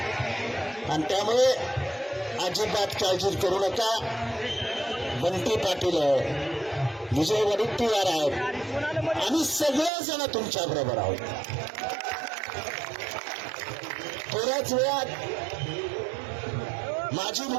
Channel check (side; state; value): left; drops out; at 9.9 s